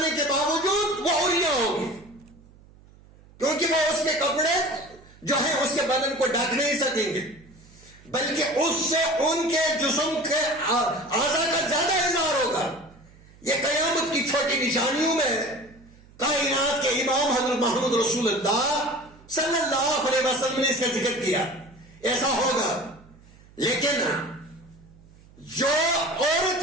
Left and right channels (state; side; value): noise; right; hum, 25 dB below the sound